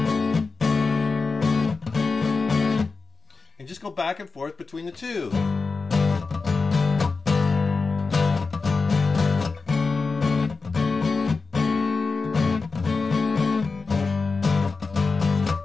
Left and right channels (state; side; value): quieter; right; 4.3 dB